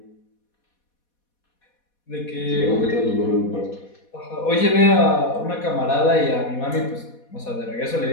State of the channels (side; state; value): right; late; 4.2 ms